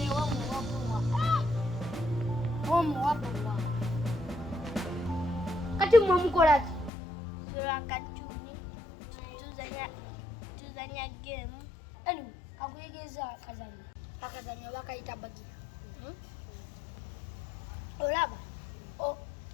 kati mwe mukolaki Katuni tuzanya game. anyway kakuyigiriza akazanyo bakayita bagira olaba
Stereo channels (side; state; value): right; drops out; at 6.9 s